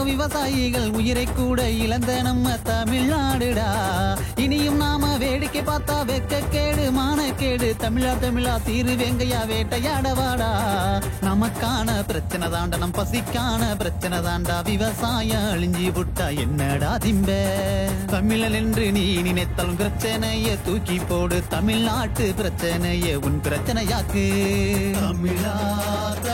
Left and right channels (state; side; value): identical; both; correlation 1.00